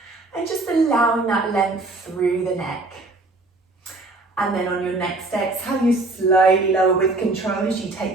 and just allowing that length through the neck. And then on your next exhale, you slowly lower with control as you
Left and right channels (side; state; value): left; quieter; 3.1 dB